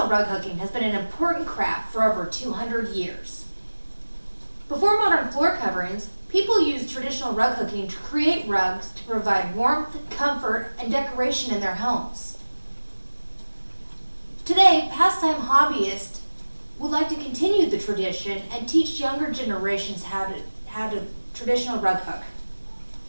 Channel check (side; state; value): both; inverted; correlation -1.00